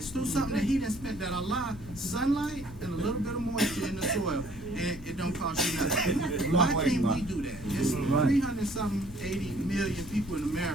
Through something that he didn't spend, that Allah, sunlight and a little bit of moisture in the soil, and it don't cost you nothing. Why can't we do that? It's 380 million people in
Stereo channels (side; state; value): right; noise; hum, 22 dB below the sound